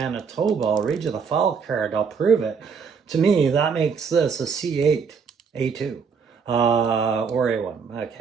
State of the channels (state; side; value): quieter; left; 5.8 dB